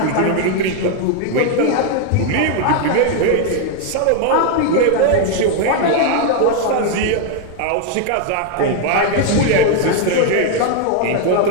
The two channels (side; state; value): both; different; correlation 0.00